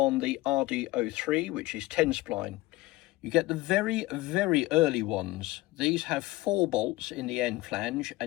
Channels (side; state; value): right; quieter; 19.4 dB